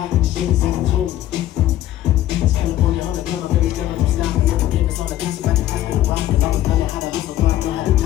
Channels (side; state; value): right; quieter; 13.4 dB